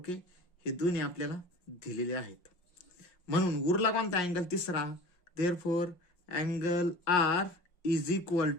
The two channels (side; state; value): right; late; 5.6 ms